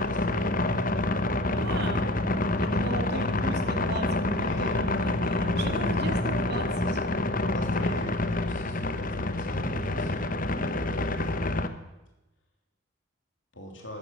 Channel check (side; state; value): both; normal; correlation 0.42